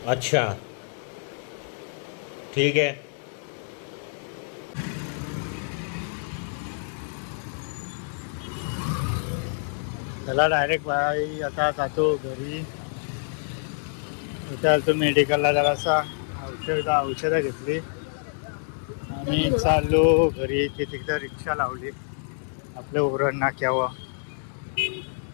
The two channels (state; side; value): silent; right; digital silence